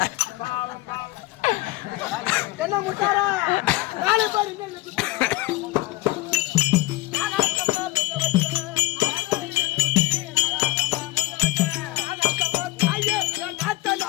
என்ன முத்தாரா நாளை பாரு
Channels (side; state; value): right; quieter; 19.8 dB